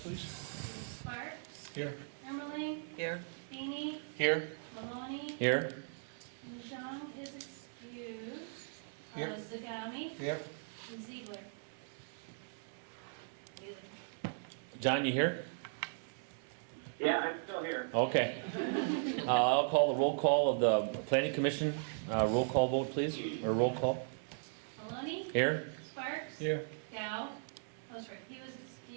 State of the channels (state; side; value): silent; left; 53 dB below the other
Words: Sparks, Here. Ermeling, Here. Feeney, Here. Maloney, Here. Jean is excused. Here. Zagami, Here. and Ziegler. John, you here? Yeah, I'm still here. Okay. I'll call the roll call of the Planning Commission. Roll call vote, please, or roll call. Maloney, Here. Sparks, Here. Dow, oh sorry, he was